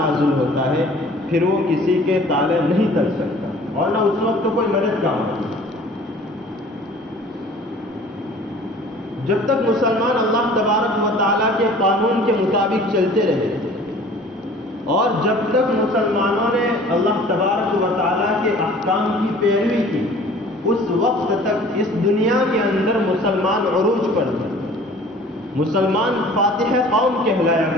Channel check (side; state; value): both; normal; correlation 0.48